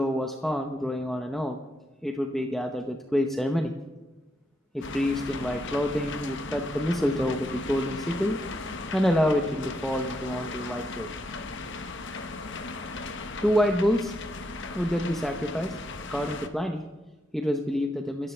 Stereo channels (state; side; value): normal; both; correlation 0.80